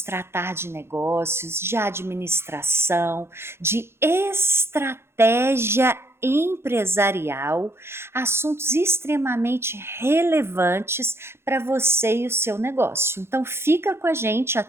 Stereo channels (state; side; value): late; left; 0.12 ms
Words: tratar de negócios, de administração, de estratégia empresarial, assuntos extremamente relevantes para você e o seu negócio. Então fica com a gente